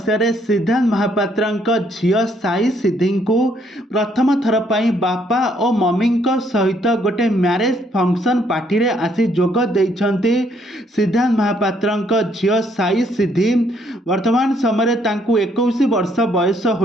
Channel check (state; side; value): normal; both; correlation 0.69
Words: सिद्धांत महापात्र झील साई सिद्धि को प्रथम थर पर बापा और मम्मी सहित गोटे मैरेज फंक्शन पार्टी रे आसी जोग देइछंती। सिद्धांत महापात्र झील साई सिद्धि वर्तमान समय 21 वर्ष बयस